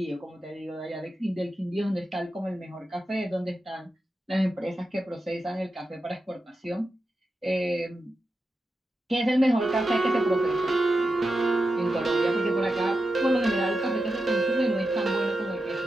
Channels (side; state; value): both; normal; correlation 0.89